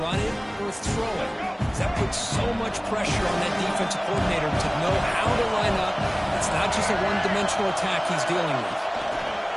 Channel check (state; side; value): identical; both; correlation 1.00